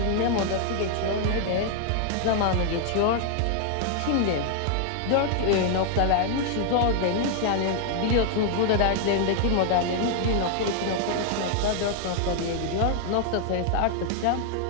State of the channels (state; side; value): different; both; correlation 0.00